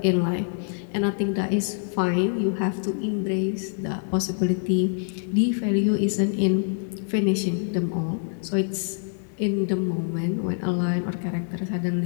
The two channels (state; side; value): silent; right; digital silence